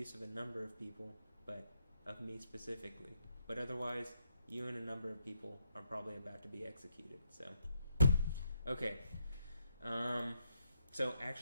of a number of people, but of me specifically. But otherwise, you and a number of people are probably about to be executed. So, okay. So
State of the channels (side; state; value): both; inverted; correlation -0.78